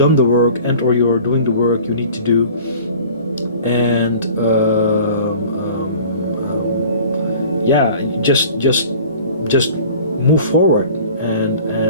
the work, and or you're doing the work you need to do, and just move forward and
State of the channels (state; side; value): inverted; both; correlation -0.44